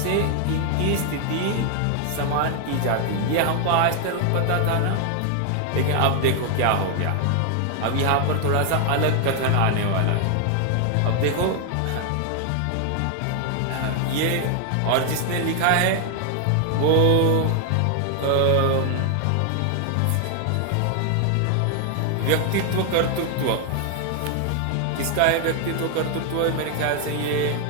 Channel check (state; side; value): different; both; correlation 0.00